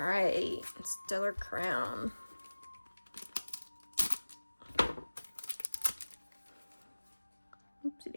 Stellar Crown. Oopsie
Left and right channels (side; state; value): both; inverted; correlation -1.00